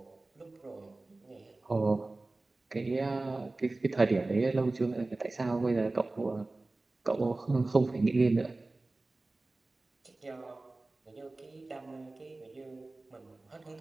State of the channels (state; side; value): quieter; left; 3.1 dB